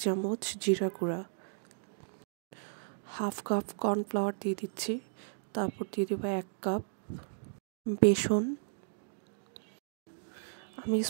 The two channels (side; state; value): left; silent; digital silence